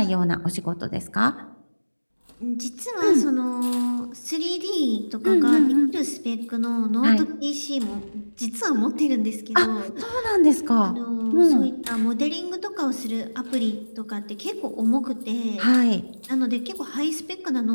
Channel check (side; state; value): both; inverted; correlation -1.00